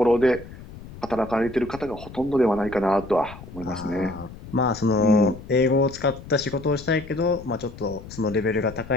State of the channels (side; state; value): left; noise; rumble, 15 dB below the sound